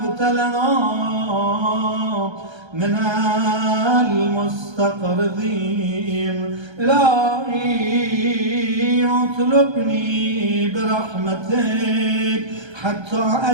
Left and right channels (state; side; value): late; left; 1.3 ms